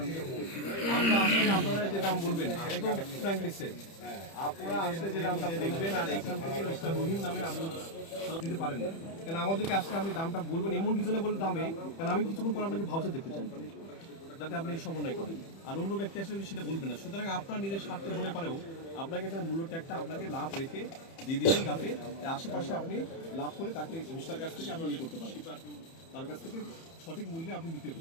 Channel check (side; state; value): right; late; 30 ms